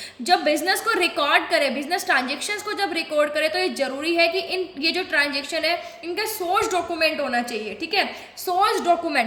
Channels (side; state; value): both; identical; correlation 1.00